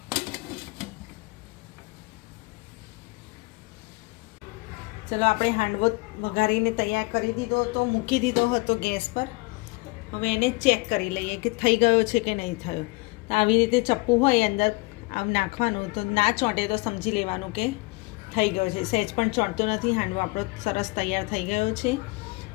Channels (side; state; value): right; quieter; 25.6 dB